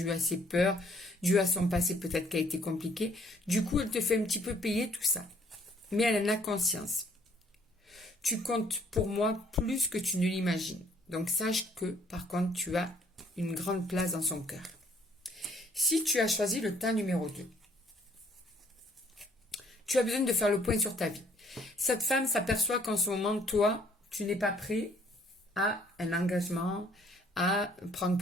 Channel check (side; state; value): both; normal; correlation 0.63